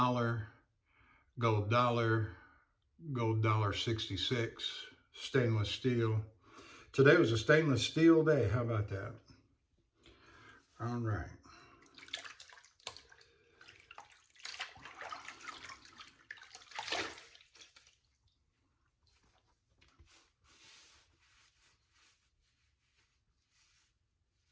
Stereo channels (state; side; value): identical; both; correlation 1.00